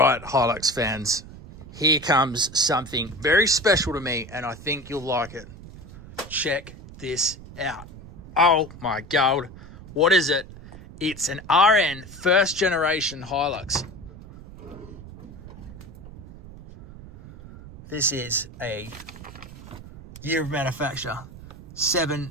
Hilux fans, here comes something very special to me, and I think you'll like it. Check this out. Oh my god, what is it? It's an RN first generation Hilux. This is a year of manufacture,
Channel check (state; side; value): noise; right; rumble, 16 dB below the sound